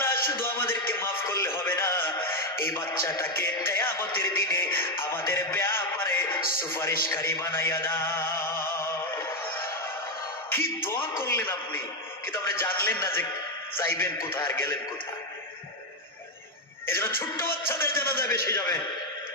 শুধু আমাদেরকে মাফ করলে হবে না, এই বাচ্চাটাকে কিয়ামতের দিনে আমাদের ব্যাপারে সুপারিশকারী বানাইয়া দাও। কি দোয়া করলেন আপনি, কিন্তু আপনি জানলেন না যে যাইবেন কোথায় আর গেলেন কোথায়। এই জন্য ছোট্ট বাচ্চাদের জানাজা বেশি যাবেন,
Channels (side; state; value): both; normal; correlation 0.06